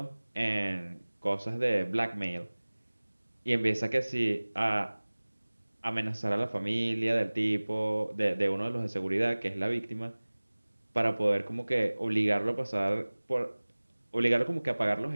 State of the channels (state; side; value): inverted; both; correlation -1.00